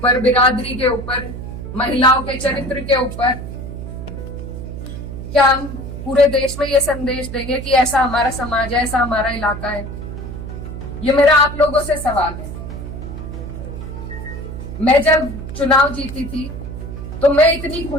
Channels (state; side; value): noise; right; hum, 9 dB below the sound